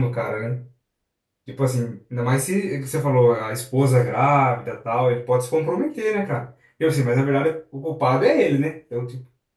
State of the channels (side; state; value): both; identical; correlation 1.00